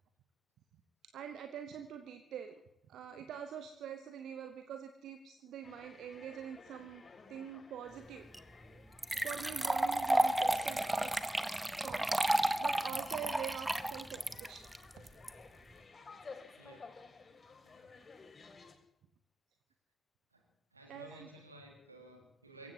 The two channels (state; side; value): normal; both; correlation 0.94